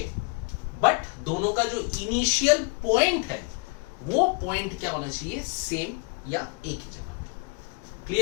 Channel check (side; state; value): right; quieter; 32.4 dB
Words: बट दोनों का जो इनिशियल पॉइंट है वो पॉइंट क्या होना चाहिए, सेम या एक ही जगह पे।